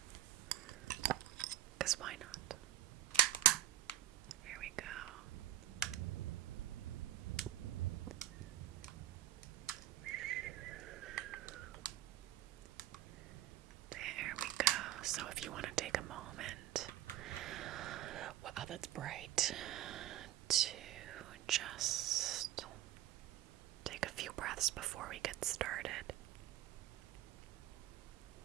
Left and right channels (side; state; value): left; quieter; 13.4 dB